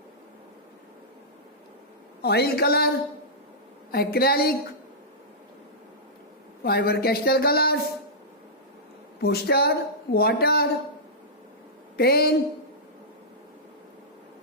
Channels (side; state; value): both; normal; correlation -0.14